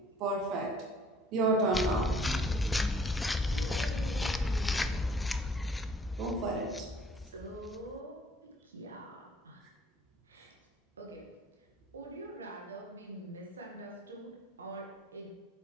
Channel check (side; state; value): both; normal; correlation 0.57